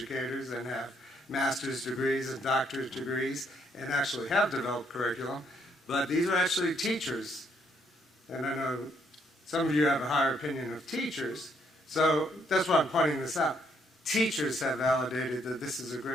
and have master's degrees and doctorate degrees and actually have developed curriculum, but these are actually teachers. And I know some of you have a higher opinion of teachers, so that's why I'm pointing this out. Teachers have validated that this is a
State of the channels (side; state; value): both; normal; correlation 0.72